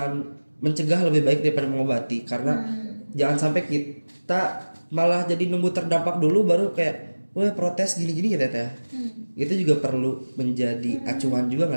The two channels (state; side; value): inverted; both; correlation -1.00